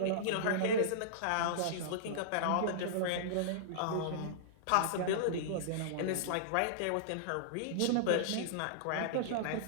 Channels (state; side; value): different; both; correlation -0.02